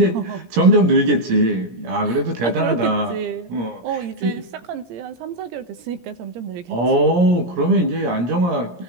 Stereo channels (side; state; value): left; late; 17 ms